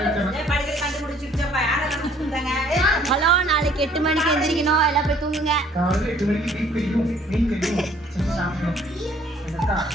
ஹலோ, நாளைக்கு 8 மணிக்கு எந்திரிக்கணும், எல்லாம் போய் தூங்குங்க.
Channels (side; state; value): both; normal; correlation 0.59